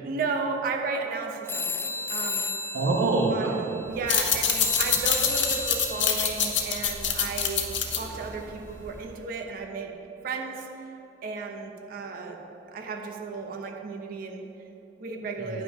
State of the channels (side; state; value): both; normal; correlation 0.06